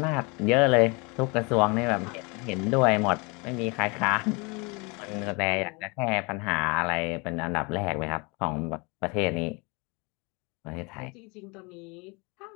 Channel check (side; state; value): right; quieter; 29.2 dB